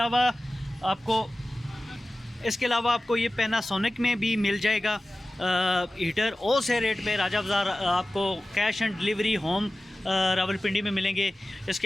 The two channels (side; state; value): both; normal; correlation 0.96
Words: आपको ये पैनासोनिक में भी मिल जाएगा हीटर होलसेल रेट पे। राजा बाज़ार आपको cash and delivery home Rawalpindi में मिलेंगे। इसके